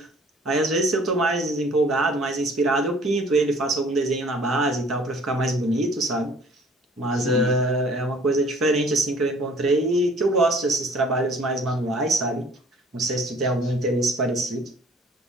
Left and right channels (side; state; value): both; normal; correlation 0.53